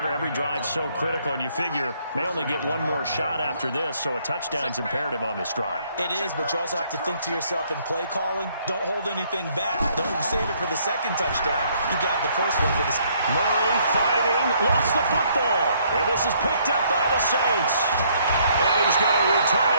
every drive so critical, and you figure may only get one more shot after this, so a touchdown's imperative on this drive. It is, but you also have to think to yourself in play calling, don't hold anything back. Don't save it for the 2nd touchdown. You got the first one for this. Murray fighting, lost the football. And this is picked up by the Saints. And he's going to return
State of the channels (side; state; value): both; inverted; correlation -0.66